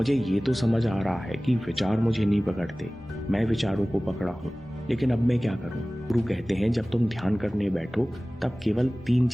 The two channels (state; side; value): normal; both; correlation 0.98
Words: ये तो समझ आ रहा है कि विचार मुझे नहीं पकड़ते, मैं विचारों को पकड़ा हूँ। लेकिन अब मैं क्या करूँ? गुरु कहते हैं जब तुम ध्यान करने बैठो तब केवल 3